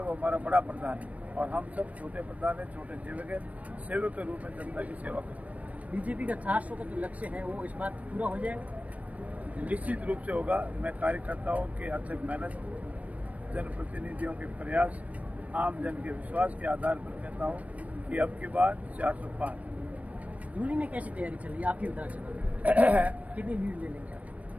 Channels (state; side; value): late; left; 0.068 ms